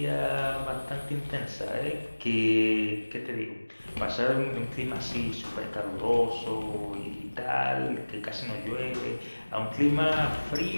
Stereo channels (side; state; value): both; inverted; correlation -1.00